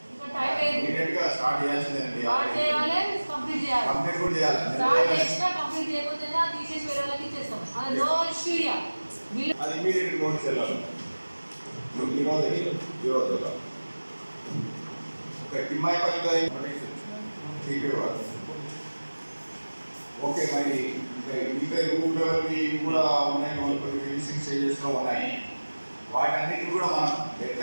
ఓకే, మరి ఇంకా రూట్ లెవెల్కి కూడా ఉన్నాయి, కొన్ని ఫినిషింగ్ స్టేజెస్లో ఉన్నాయి. వాటన్నిటిని కూడా మనం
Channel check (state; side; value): inverted; both; correlation -1.00